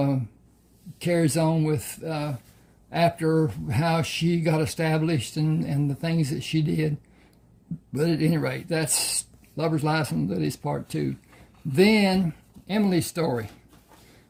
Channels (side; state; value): both; identical; correlation 1.00